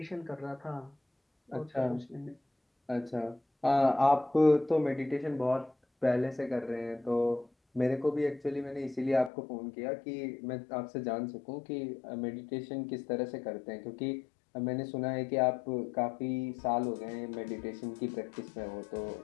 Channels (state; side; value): drops out; right; at 9.3 s